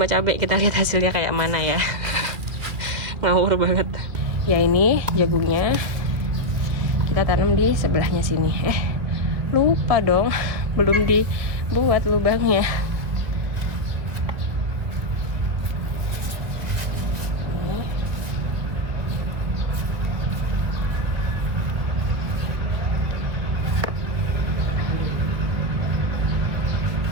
cabai, kita lihat hasilnya kayak mana ya. Ngawur banget. Ya ini jagungnya kita tanam di sebelahnya sini. Lupa dong, belum dibuat lubangnya.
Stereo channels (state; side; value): late; left; 2.2 ms